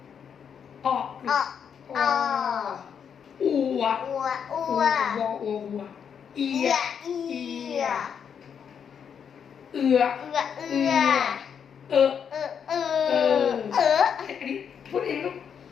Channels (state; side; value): quieter; right; 7.5 dB